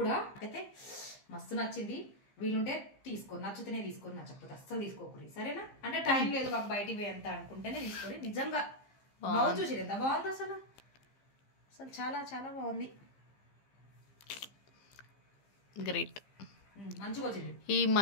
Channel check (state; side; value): late; right; 15 ms